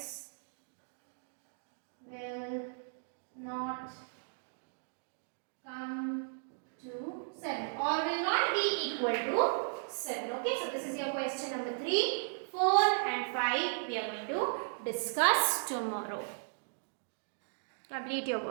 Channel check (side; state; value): left; silent; digital silence